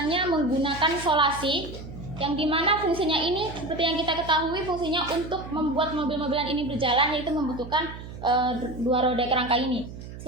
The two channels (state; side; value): noise; right; hum, 12 dB below the sound